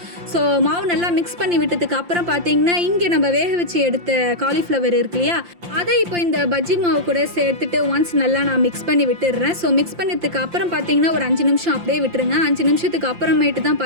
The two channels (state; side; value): late; left; 5.7 ms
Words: ஸோ மாவு நல்லா மிக்ஸ் பண்ணி விட்டதுக்கு அப்புறம் பார்த்தீங்கன்னா இங்கே நம்ம வேக வச்சு எடுத்த காலிஃப்ளவர் இருக்கு இல்லையா, அதை இப்போ இந்த பஜ்ஜி மாவு கூட சேர்த்துட்டு ஒன்ஸ் நல்லா நான் மிக்ஸ் பண்ணி விட்டுடுறேன். ஸோ மிக்ஸ் பண்ணதுக்கு அப்புறம் பார்த்தீங்கன்னா ஒரு 5 நிமிஷம் அப்படியே விட்டுருங்க. 5 நிமிஷத்துக்கு அப்புறமேட்டு தான்